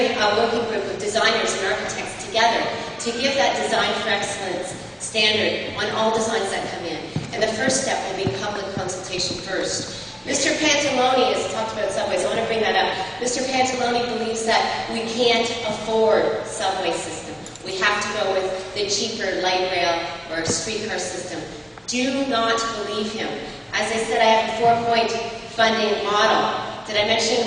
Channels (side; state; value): both; identical; correlation 1.00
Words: a working group of designers and architects together to give that Design for Excellence standard on all designs that come in. And the first step will be public consultation first. Mr. Pantalone has talked about subways. I want to bring that up. Mr. Pantalone believes that we can't afford subway system. We have to go with the cheaper light rail or streetcar system. Do not believe him. As I said, I have a 4-point funding model. Did I mention